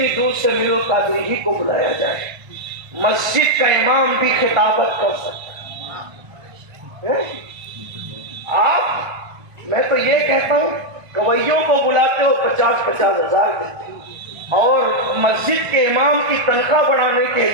دور سے میرو قادری ہی کو بلایا جائے، مسجد کا امام بھی خطابت کر سکتا ہے۔ آپ، میں تو یہ کہتا ہوں، گویوں کو بلاتے ہو 50-50 ہزار دیتے اور مسجد کے امام کی تنخواہ بڑھانے کے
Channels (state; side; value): late; left; 1.3 ms